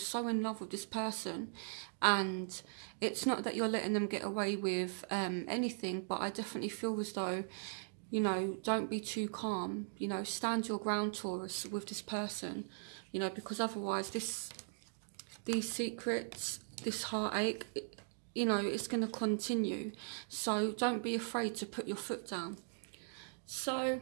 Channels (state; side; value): silent; left; digital silence